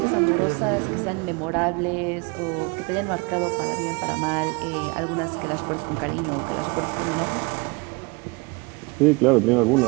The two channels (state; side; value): quieter; left; 28.4 dB